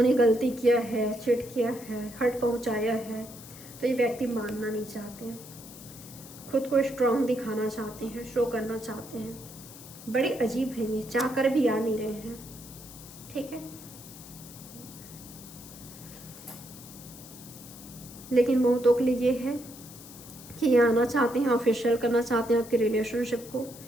गलती किया है, चिट किया है, हर्ट पहुंचाया है, तो ये व्यक्ति मानना नहीं चाहते हैं, खुद को स्ट्रांग दिखाना चाहते हैं, शो करना चाहते हैं। बड़े अजीब हैं ये, चाह कर भी आ नहीं रहे हैं। ठीक है, लेकिन बहुतों के लिए ये है कि ये आना चाहते हैं, ऑफिशियल करना चाहते हैं आपके रिलेशनशिप को।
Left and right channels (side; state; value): left; noise; hiss, 17 dB below the sound